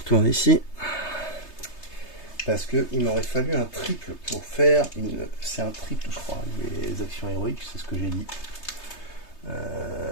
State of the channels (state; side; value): late; right; 3.3 ms